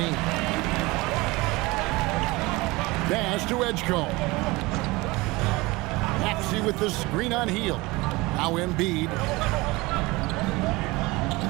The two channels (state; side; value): quieter; left; 22.4 dB